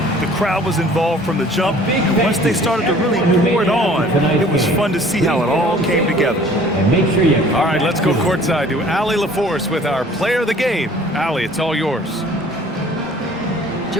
The crowd was involved from the jump, and once they started to really pour it on, it was fun to see how it all came together. All right, let's go courtside to Allie LaForce with our player of the game. Allie, it's all yours.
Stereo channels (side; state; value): both; normal; correlation 0.52